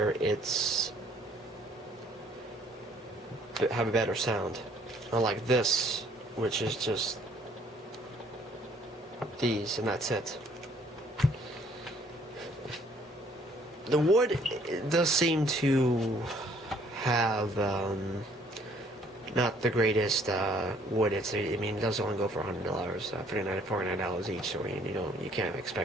it's have a better sound, unlike this, which is just these and that's it. The wood does seem to have not the greatest wood. It does only go for $100, $49 each. So you can't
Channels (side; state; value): both; normal; correlation 0.61